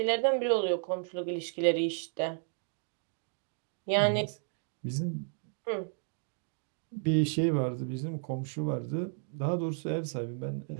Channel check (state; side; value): silent; left; 56 dB below the other